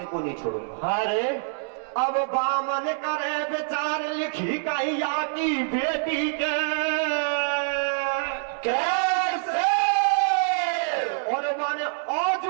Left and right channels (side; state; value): left; silent; digital silence